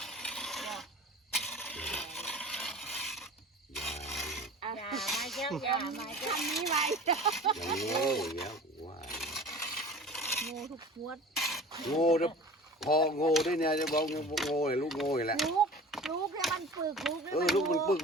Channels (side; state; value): both; normal; correlation 0.40